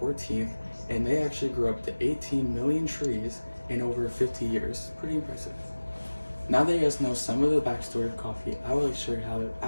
and they actually grew up to 18 million trees in over 50 years. Pretty impressive. Now that you guys know some of the backstory of coffee, I would like to show you how to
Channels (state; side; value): inverted; both; correlation -1.00